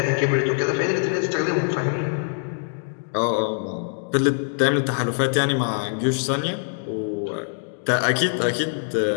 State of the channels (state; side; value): silent; right; digital silence